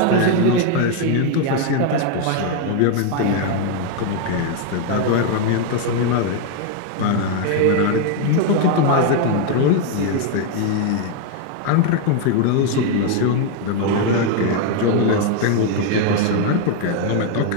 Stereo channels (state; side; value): different; both; correlation 0.01